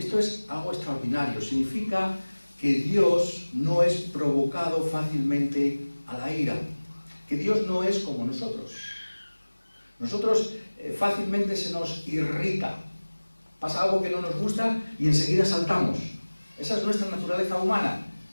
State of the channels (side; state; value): both; inverted; correlation -1.00